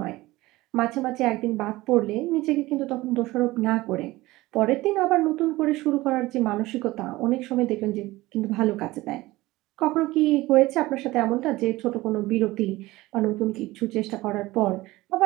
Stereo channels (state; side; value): quieter; left; 19.0 dB